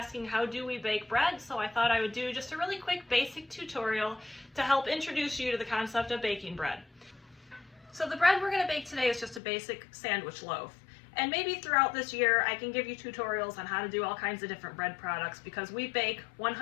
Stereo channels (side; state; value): right; drops out; at 9.4 s